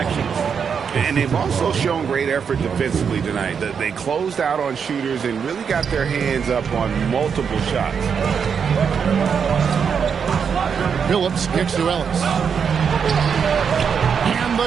And they've also shown great effort defensively tonight. They closed out on shooters and really got their hands up on multiple shots. Phillips kicks to Ellis. And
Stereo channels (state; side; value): quieter; left; 6.7 dB